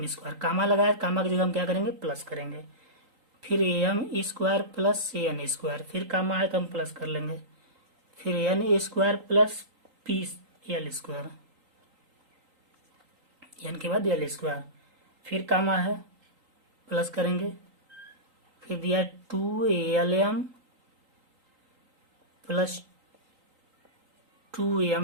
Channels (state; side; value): late; left; 3.8 ms